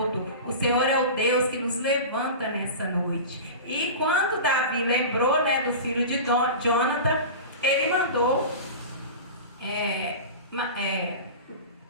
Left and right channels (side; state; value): both; inverted; correlation -0.30